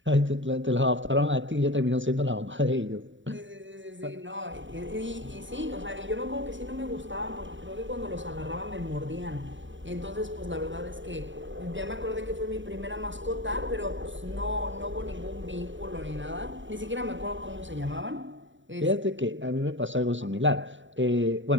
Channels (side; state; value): left; late; 0.55 ms